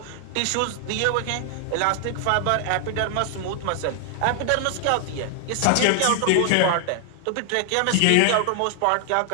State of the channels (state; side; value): different; both; correlation 0.00